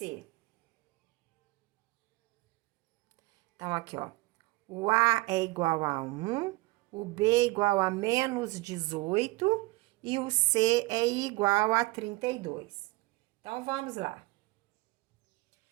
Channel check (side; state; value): left; quieter; 22.7 dB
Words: Então, aqui, ó. O A é igual a 1, o B é igual a menos 18 e o C é igual a 32. Então, vamos lá.